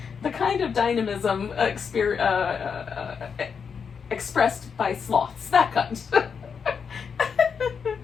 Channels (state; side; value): quieter; right; 6.3 dB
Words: The kind of dynamism expressed by sloths, that kind.